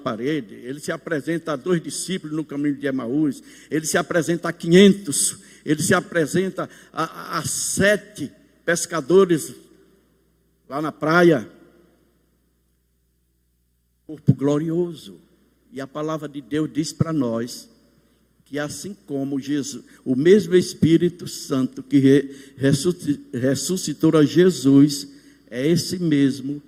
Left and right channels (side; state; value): both; identical; correlation 1.00